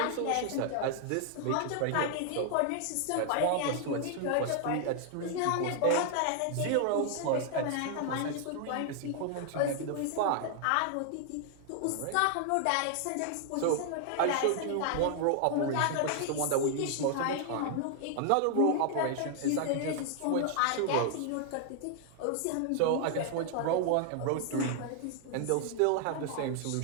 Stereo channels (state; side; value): different; both; correlation 0.00